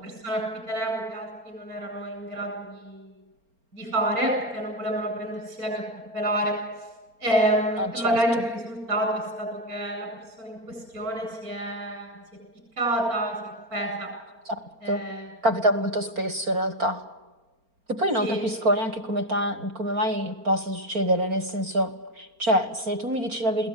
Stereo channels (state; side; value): late; left; 4.4 ms